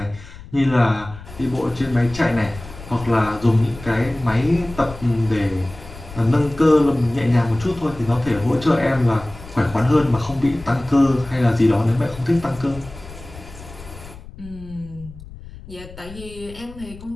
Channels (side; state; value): left; noise; rumble, 16 dB below the sound